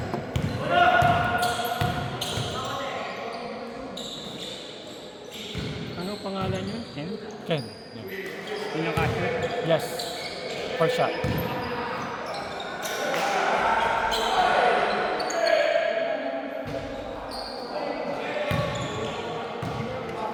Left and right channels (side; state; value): both; identical; correlation 1.00